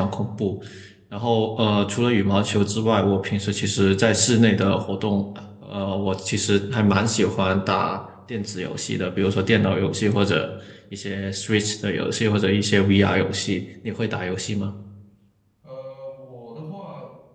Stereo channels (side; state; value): both; identical; correlation 1.00